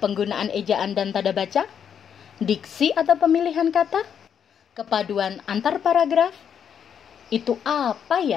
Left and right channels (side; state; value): right; quieter; 8.1 dB